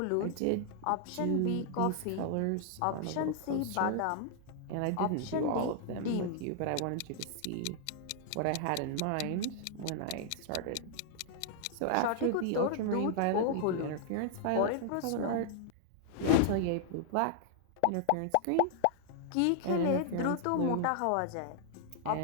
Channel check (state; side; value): different; both; correlation -0.01